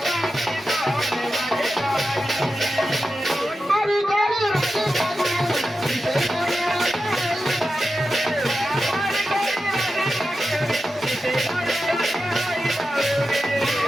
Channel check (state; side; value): normal; both; correlation 0.91